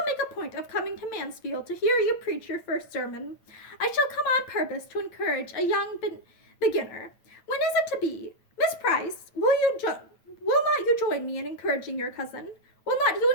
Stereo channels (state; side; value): late; right; 9.0 ms